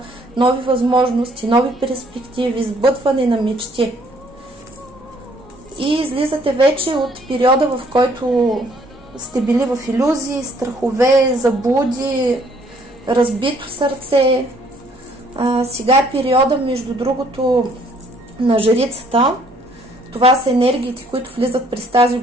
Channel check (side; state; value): both; normal; correlation 0.63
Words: нови възможности, нови перспективи, сбъдване на мечти. И излизате вече от периода, в който сте били в илюзии, страхове, заблуди, разбито сърце. Сега е периода, между другото, на жрицата. Това са енергиите, които влизат през тази